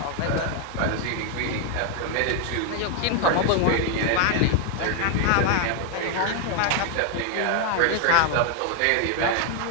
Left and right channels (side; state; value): both; different; correlation 0.00